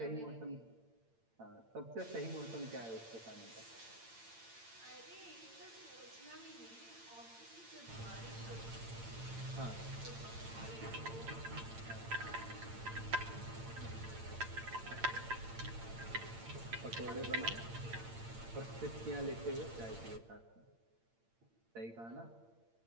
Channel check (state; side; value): late; left; 8.8 ms